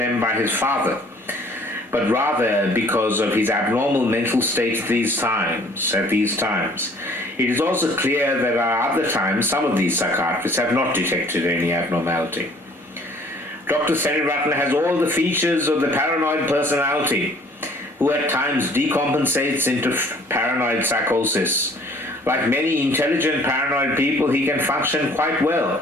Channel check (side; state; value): both; normal; correlation 0.56